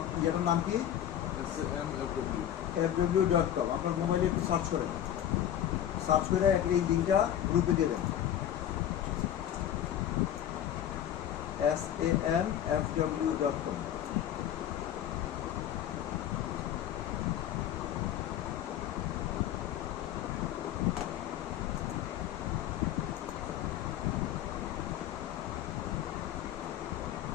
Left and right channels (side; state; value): right; quieter; 10.9 dB